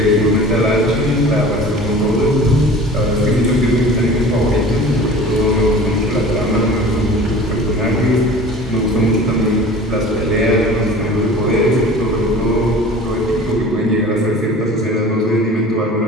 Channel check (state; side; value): normal; both; correlation 0.42